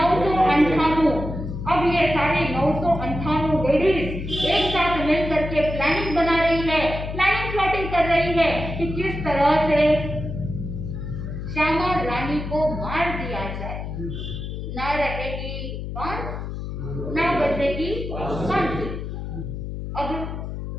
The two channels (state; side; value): noise; left; hum, 6 dB below the sound